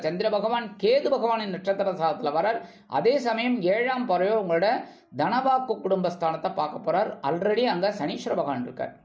சந்திர பகவான் கேது பகவானின் நட்சத்திர சாரத்தில் வரார். அதே சமயம் 7ஆம் பார்வையோ உங்களோட தனவாக்கு குடும்பஸ்தானத்தை பார்க்க போகிறார். ஆல்ரெடி அங்கே சனீஸ்வர பகவான் இருக்கார்.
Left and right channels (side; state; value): both; identical; correlation 1.00